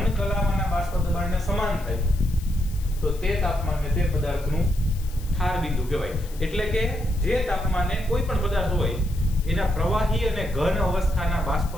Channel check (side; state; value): left; noise; hiss, 20 dB below the sound